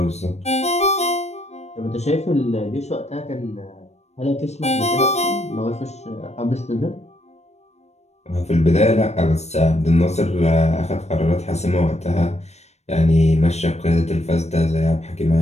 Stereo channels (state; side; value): late; right; 0.32 ms